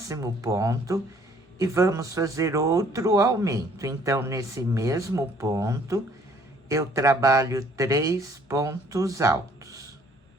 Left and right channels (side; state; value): both; normal; correlation 0.59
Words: ponto e vamos fazer outro aumento. Então, nesse mesmo ponto, eu trabalho 3 pontos altos,